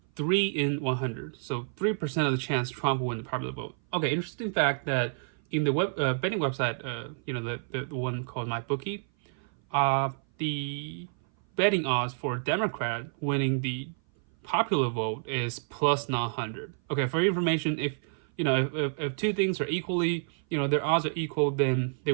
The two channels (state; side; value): silent; left; 57 dB below the other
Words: 3 in 100. So 3% of the chance Trump will win the popular vote. Okay, interesting fact that in the betting website, the one called MyBookie, the betting odds for Democrat winning the popular vote is plus 900. Okay, for your information, if two things are equally, their odds are equal, then they